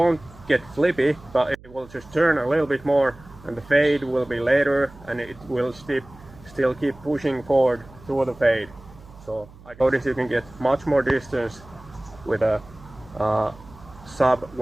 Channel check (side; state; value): right; noise; hum, 21 dB below the sound